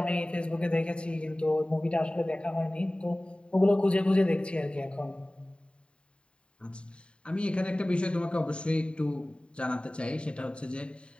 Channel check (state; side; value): late; right; 0.054 ms